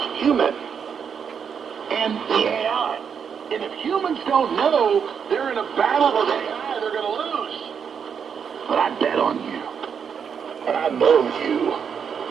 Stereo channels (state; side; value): quieter; left; 7.1 dB